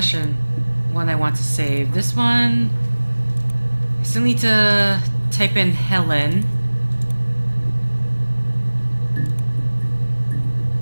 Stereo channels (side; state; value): both; inverted; correlation -1.00